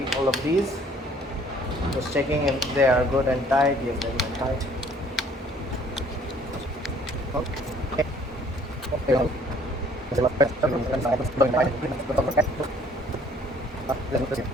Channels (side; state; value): both; normal; correlation 0.58